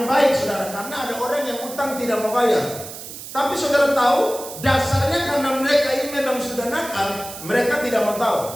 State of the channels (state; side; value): noise; right; hiss, 12 dB below the sound